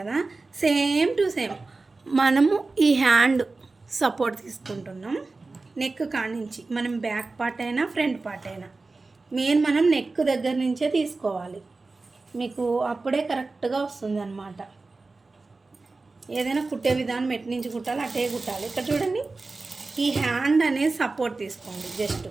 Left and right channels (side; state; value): left; quieter; 3.6 dB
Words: సేమ్ టు సేమ్ మనము ఈ హ్యాండ్ సపోర్ట్ తీసుకుంటున్నాం. నెక్ కానించి మనం బ్యాక్ పార్ట్ అయినా ఫ్రంట్ పార్ట్ అయినా మనం నెక్ దగ్గర నుంచే తీసుకోవాలి, మీకు అప్పుడే కరెక్ట్గా వస్తుంది అన్నమాట. ఏదైనా కుట్టే విధానం ఎటు నుంచి కుట్టాలి అటే కుట్టాలి. ఇక్కడ చూడండి, ఈ హ్యాండ్ అనేది సపోర్ట్ తీసుకోండి. జస్ట్